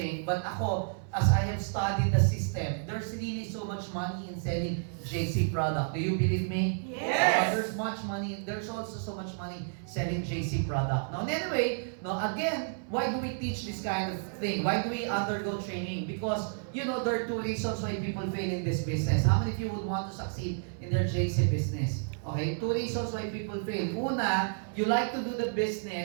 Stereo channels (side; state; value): left; silent; 57 dB below the other